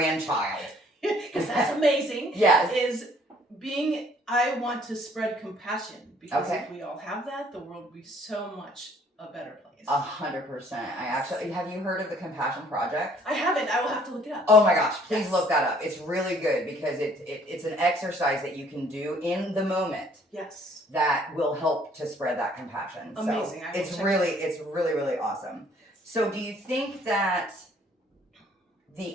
Because that's amazing. Yes. Is being, I want to spread compassion, because Okay. if we all have that, the world would be so much a better place. 100%. I actually, have you heard of the Compassion Project? I haven't. I will have to look it up. Oh my gosh, please Yes. look that up. It's really good because it's an exercise that you can do in the moment Yes. that will help to spread that compassion. Amazing. So I will it's check really, really awesome. So do you think that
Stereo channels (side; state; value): both; normal; correlation 0.59